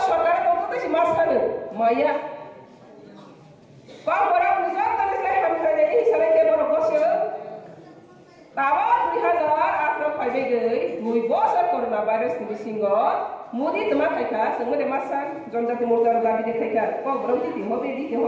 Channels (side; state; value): both; identical; correlation 1.00